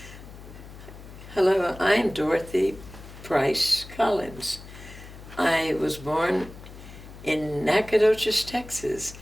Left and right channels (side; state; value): left; noise; hum, 16 dB below the sound